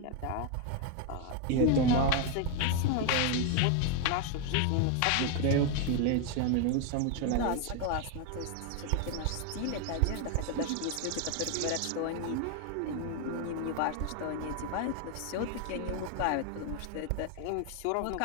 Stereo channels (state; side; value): different; both; correlation 0.01